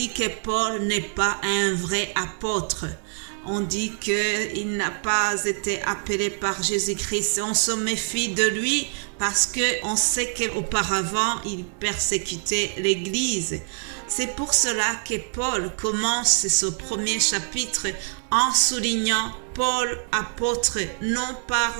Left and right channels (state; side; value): silent; left; 58 dB below the other